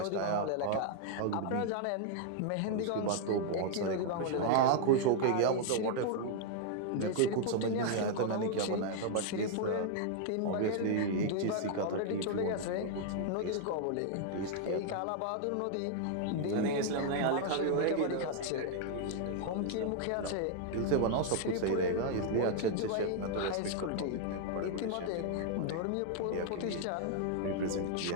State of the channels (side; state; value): both; different; correlation 0.00